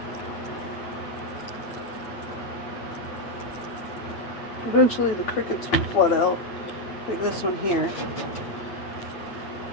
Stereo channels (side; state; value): right; late; 9.1 ms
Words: Eventually the crickets will flood out, like this one here.